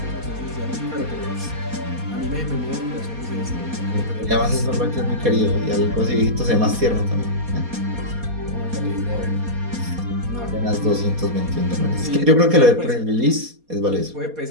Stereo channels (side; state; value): left; late; 4.2 ms